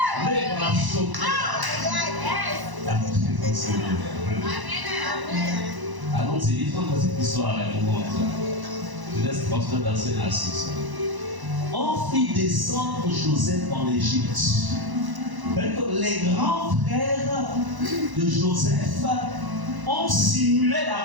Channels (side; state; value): left; late; 1.0 ms